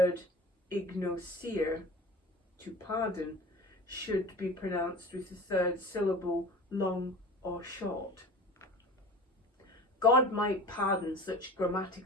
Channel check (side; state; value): both; normal; correlation 0.38